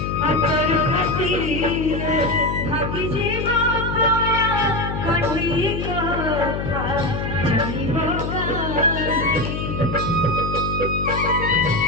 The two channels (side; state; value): left; noise; hum, 4 dB below the sound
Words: আতর হাসিলে ভাগি যাব তোরা কঠি কথা জানিব